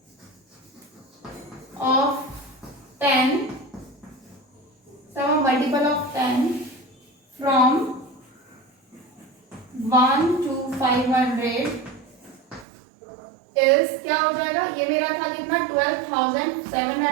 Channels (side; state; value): left; drops out; at 12.7 s